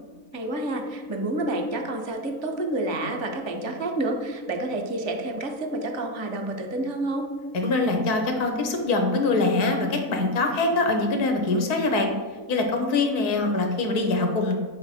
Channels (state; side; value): late; right; 4.0 ms